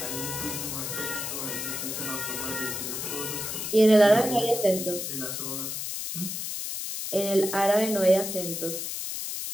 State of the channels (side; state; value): left; noise; hiss, 4 dB below the sound